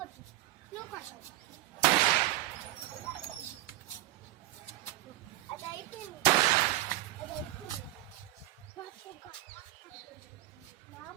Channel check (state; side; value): quieter; left; 15.9 dB